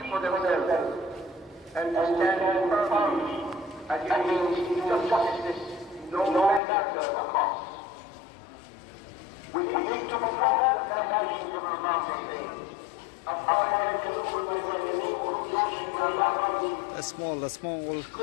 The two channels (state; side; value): drops out; right; at 6.6 s